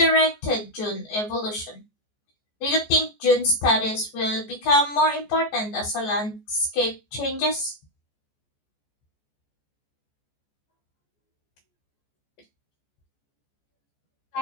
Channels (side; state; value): right; late; 14 ms